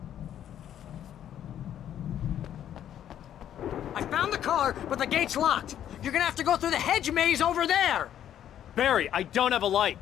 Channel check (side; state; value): right; quieter; 10.5 dB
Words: I found the car, but the gate's locked. You're gonna have to go through the hedge maze over there. Barry, I don't have a light.